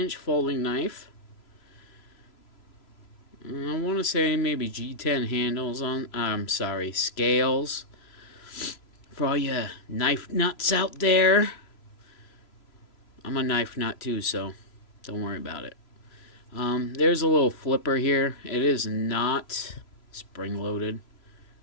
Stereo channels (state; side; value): late; right; 3.0 ms